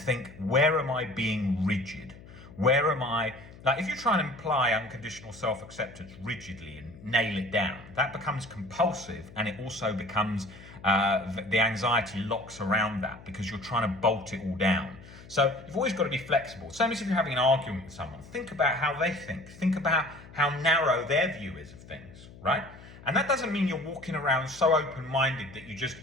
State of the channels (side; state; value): left; noise; hum, 19 dB below the sound